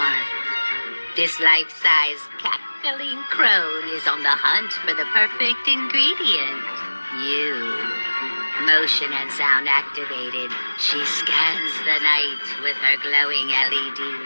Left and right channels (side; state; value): both; inverted; correlation -1.00